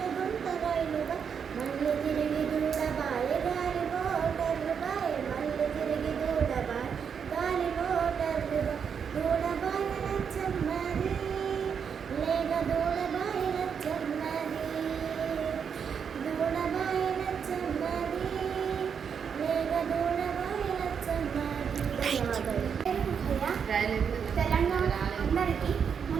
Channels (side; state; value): left; quieter; 7.0 dB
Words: రైలుగా మళ్ళీ తిరిగి దూడబాయ గాలి మోటర్లుబాయ మళ్ళీ తిరిగి దూడబాయ గాలి మోటర్లుగా దూడబాయ నచ్చమ్మది లేక దూడబాయ నచ్చమ్మది దూడబాయ నచ్చమ్మది లేక దూడబాయ నచ్చమ్మది. తెలంగాణ అందరికీ